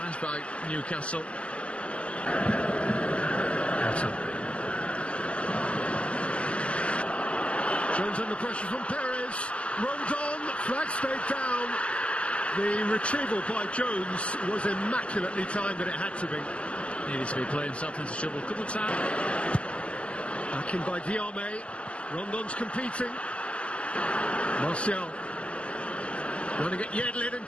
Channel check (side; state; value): right; late; 0.056 ms